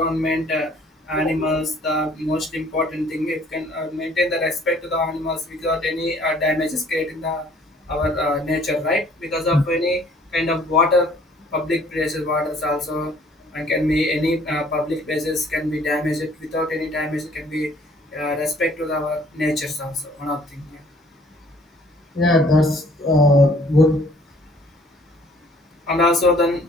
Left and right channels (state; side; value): normal; both; correlation 0.57